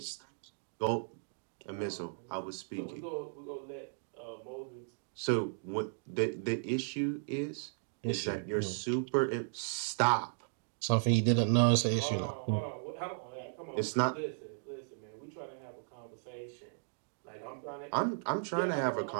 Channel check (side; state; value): left; silent; digital silence